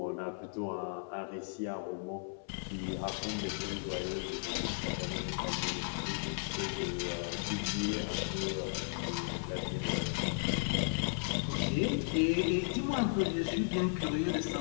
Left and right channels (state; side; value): silent; right; 54 dB below the other